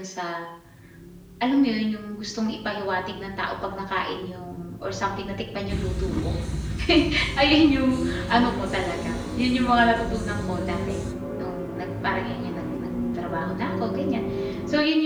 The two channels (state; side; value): identical; both; correlation 1.00